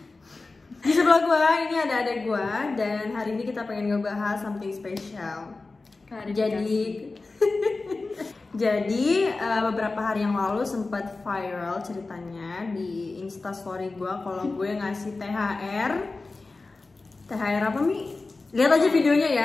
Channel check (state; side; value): quieter; right; 3.6 dB